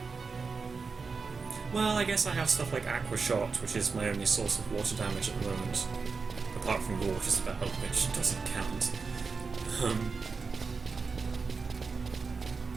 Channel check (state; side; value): quieter; left; 4.7 dB